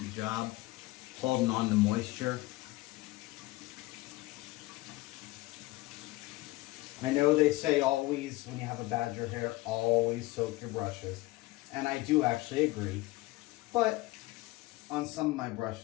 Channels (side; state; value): right; quieter; 20.1 dB